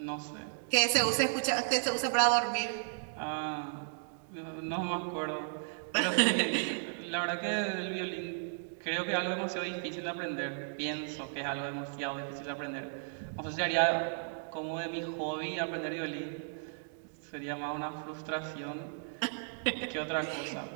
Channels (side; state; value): left; silent; digital silence